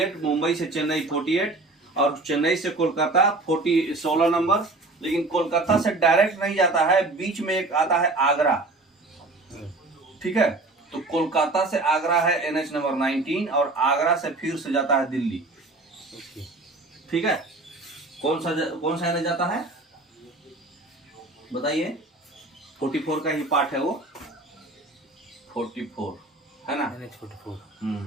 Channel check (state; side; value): quieter; left; 3.1 dB